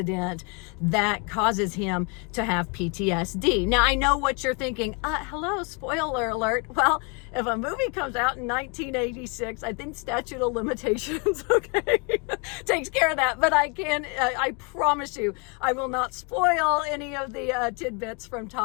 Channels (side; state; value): right; quieter; 32.6 dB